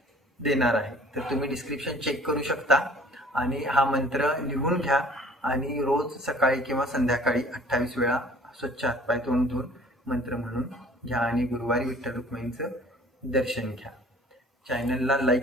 देणार आहे, तर तुम्ही डिस्क्रिप्शन चेक करू शकता आणि हा मंत्र लिहून घ्या आणि रोज सकाळी किंवा संध्याकाळी 28 वेळा स्वच्छ हातपाय तोंड धुवून मंत्र म्हणून घ्या आणि गुरुवारी विठ्ठल रुक्मिणीचं दर्शन घ्या. चॅनलला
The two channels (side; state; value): both; normal; correlation 0.51